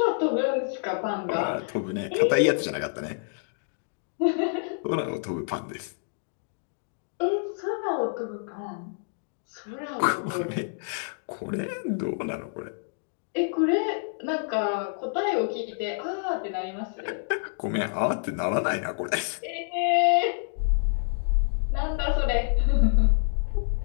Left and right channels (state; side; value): silent; right; digital silence